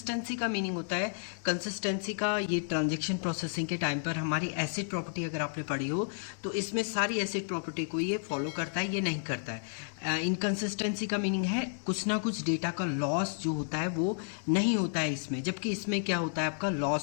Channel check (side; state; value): right; silent; 57 dB below the other